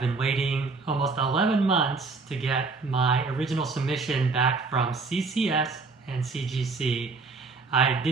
waiting almost 11 months to get my original submission back from CCS and CGC. I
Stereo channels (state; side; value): quieter; left; 4.1 dB